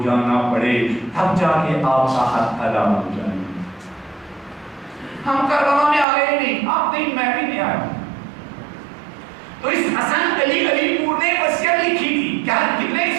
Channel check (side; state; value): left; drops out; at 6.1 s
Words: جانا پڑے تب جا کے آپ کا حق ادا ہو جائے. ہم کربلا میں آئے ہی نہیں، آپ نہیں، میں بھی نہیں آیا. تو اس حسن علی پور نے وصیت لکھی تھی. کیا کتنے